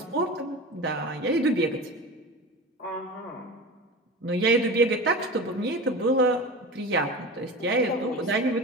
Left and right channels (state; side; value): normal; both; correlation 0.31